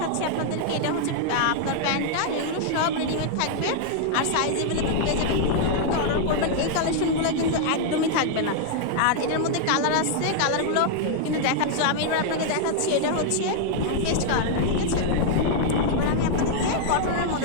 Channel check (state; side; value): different; both; correlation -0.01